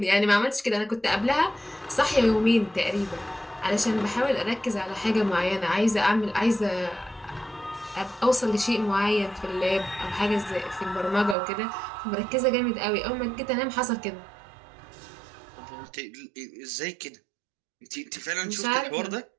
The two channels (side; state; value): left; drops out; at 11.4 s